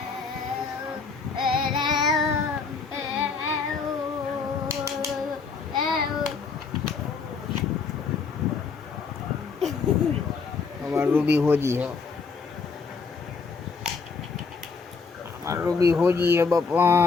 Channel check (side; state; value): right; quieter; 4.9 dB